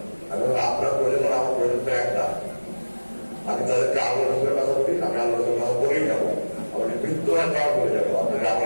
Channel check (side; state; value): both; inverted; correlation -1.00